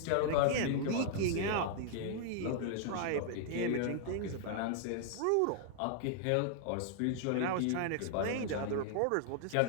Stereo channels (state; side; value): different; both; correlation 0.00